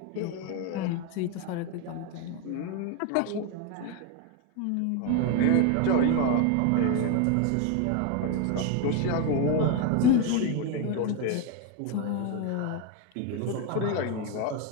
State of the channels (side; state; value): both; different; correlation 0.02